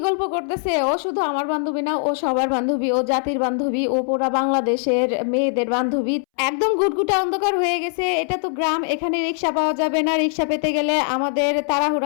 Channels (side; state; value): right; silent; 65 dB below the other